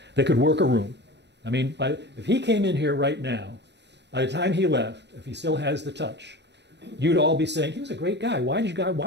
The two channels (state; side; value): late; left; 0.50 ms